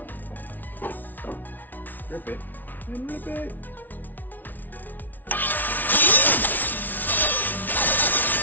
Rip it and rip it.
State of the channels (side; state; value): right; late; 0.084 ms